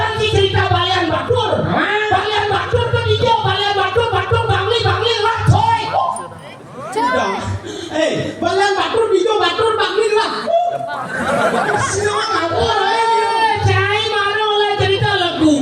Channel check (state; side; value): identical; both; correlation 1.00